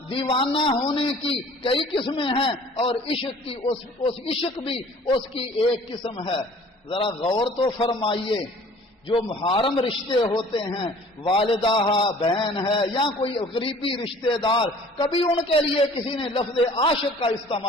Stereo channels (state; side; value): normal; both; correlation 0.51